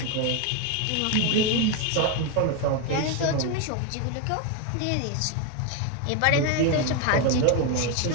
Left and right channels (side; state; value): both; different; correlation 0.01